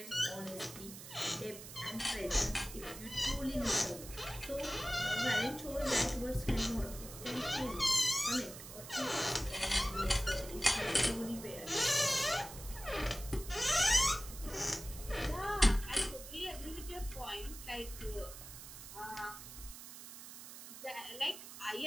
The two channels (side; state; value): right; noise; hiss, 13 dB below the sound